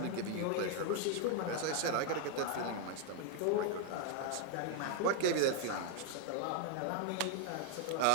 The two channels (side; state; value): both; different; correlation 0.00